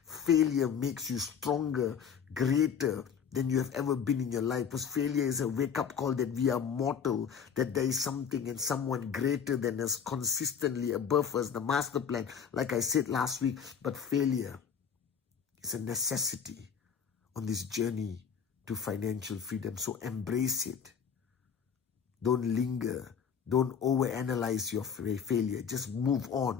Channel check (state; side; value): quieter; right; 7.3 dB